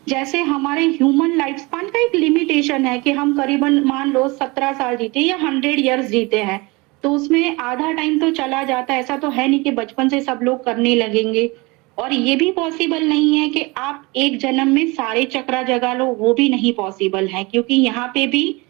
जैसे हमारे ह्यूमन लाइफ स्पान का एक लिमिटेशन है कि हम करीबन मान लो 17 साल जीते या 100 ईयर्स जीते हैं, तो उसमें आधा टाइम तो चला जाता है। ऐसा तो है नहीं कि बचपन से सब लोग करने लगेंगे। और ये भी पॉसिबल नहीं है कि आप एक जन्म में सारे चक्रा जगा लो, वो भी नहीं पॉसिबल है, क्योंकि यहाँ पे भी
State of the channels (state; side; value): quieter; left; 25.1 dB